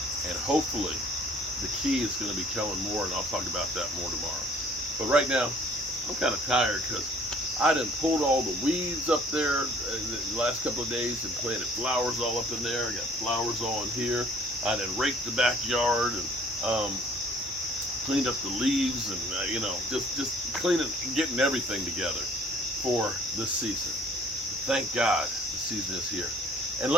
and hopefully the key is going to be Kellen Moore, and I'll talk about that more tomorrow. But right now, I'm kind of tired because I done pulled all the weeds up there the last couple of days and planted flowers all up in there. I got flowers all in here. I done raked the backyard and cleaned up the leaves and, just cleaning, getting everything together for this season. Thank God the season is here. And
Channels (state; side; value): normal; both; correlation 0.56